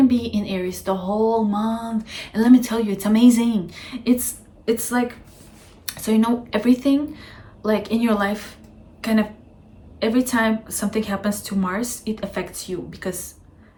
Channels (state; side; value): identical; both; correlation 1.00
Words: be in Aries the whole month. And let me tell you, it's amazing. It's like, so you know, everything like in your life, kind of every time something happens to Mars, it affects you, because